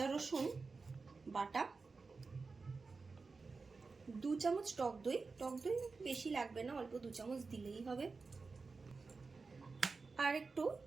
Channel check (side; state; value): left; quieter; 4.3 dB